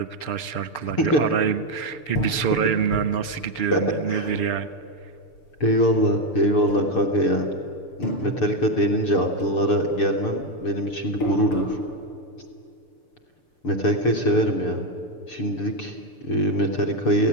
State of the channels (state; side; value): late; right; 6.8 ms